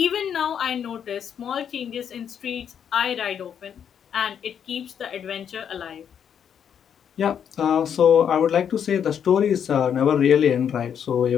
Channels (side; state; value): right; quieter; 8.3 dB